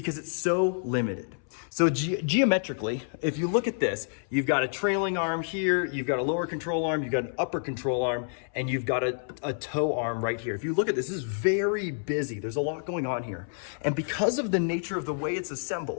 it's so limited. So geometrically, if you look at this, you've got a trailing arm here, you've got a lower control arm, you've got an upper control arm, and you've got a toe arm right here. If you look at this is very busy. There's a lot going on here. And because of the nature of the way it's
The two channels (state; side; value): silent; right; 59 dB below the other